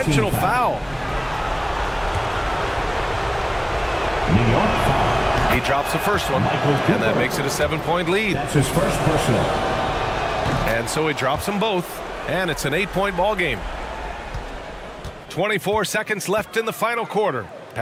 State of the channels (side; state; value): both; identical; correlation 1.00